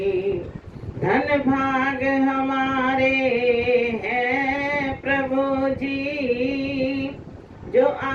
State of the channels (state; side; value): identical; both; correlation 1.00